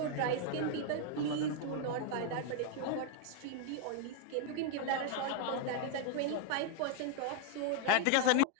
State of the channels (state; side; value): different; both; correlation 0.00